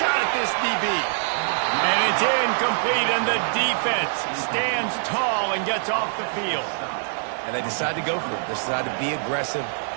at this DB. And it's incomplete, and the defense stands tall and gets off the field. And they decide to go for it. They decide to be aggressive,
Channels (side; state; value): left; silent; digital silence